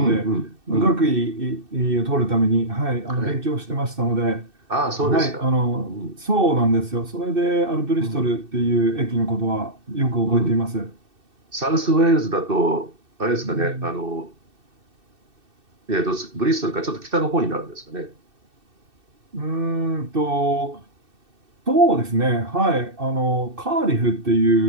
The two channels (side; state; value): left; late; 2.6 ms